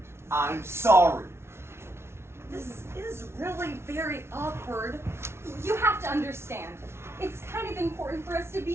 I'm sorry. This is really very awkward. You have to understand. It's kind of important for us to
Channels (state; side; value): late; left; 0.12 ms